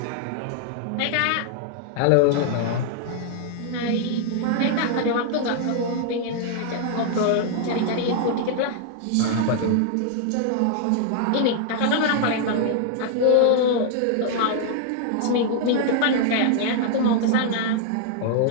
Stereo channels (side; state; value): both; different; correlation -0.01